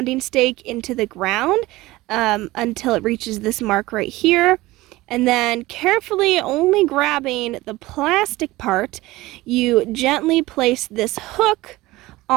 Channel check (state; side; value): quieter; left; 19.0 dB